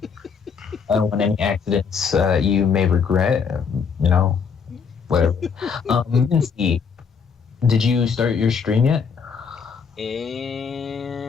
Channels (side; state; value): right; quieter; 6.1 dB